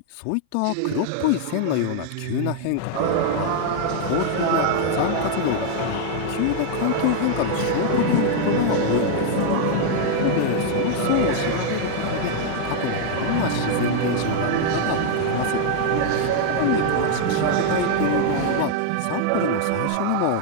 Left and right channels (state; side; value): different; both; correlation 0.00